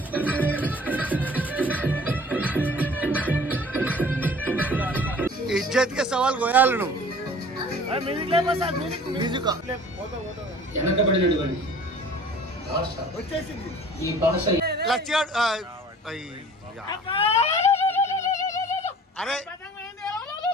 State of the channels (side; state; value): both; normal; correlation 0.48